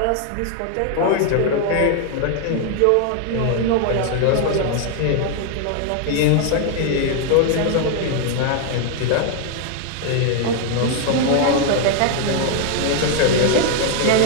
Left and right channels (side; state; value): both; different; correlation 0.00